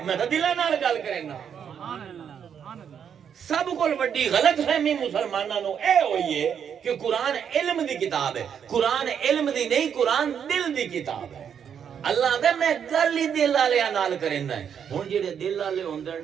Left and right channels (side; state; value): left; quieter; 8.0 dB